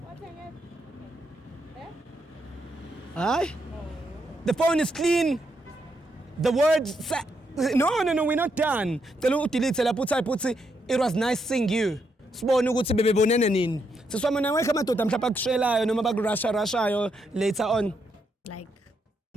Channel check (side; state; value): both; normal; correlation 0.79